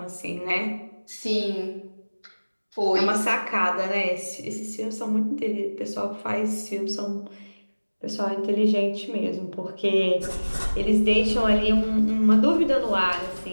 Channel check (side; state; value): both; inverted; correlation -1.00